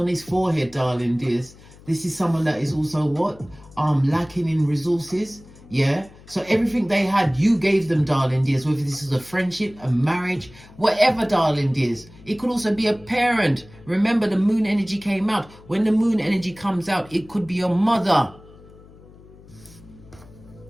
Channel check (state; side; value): noise; left; hum, 22 dB below the sound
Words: his forehead, darling dears, this is someone that is also what? Lacking in resources. Yeah. So everything they had, you gave them, darling dears. Whether this is a friendship, a marriage, whatever, darling dears. It could also be a parent. Remember, the moon energy came out. When the moon energy comes out, it could be your mother.